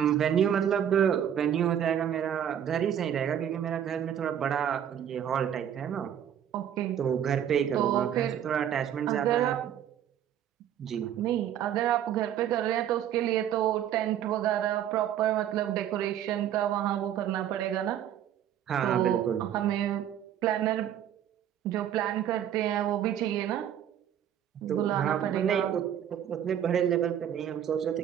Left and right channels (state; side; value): quieter; left; 10.0 dB